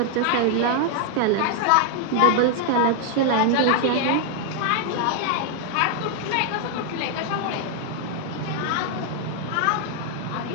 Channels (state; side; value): different; both; correlation 0.00